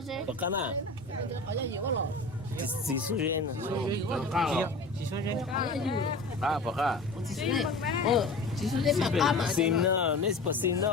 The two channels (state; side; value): quieter; right; 3.2 dB